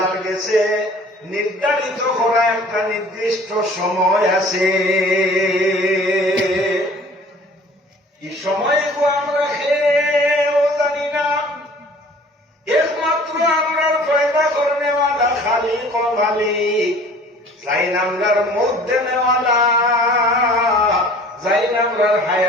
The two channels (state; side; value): normal; both; correlation 0.49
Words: কাছে নির্ধারিত করা একটা নির্দিষ্ট সময় আছে। এই সময়গুলো আমরা খেয়েও জানি না, একমাত্র আমরা পয়দা করে নেওয়ালা খালিক ও মালিক, যাই নামরার মধ্যে নেওয়ালা, যাই নামরার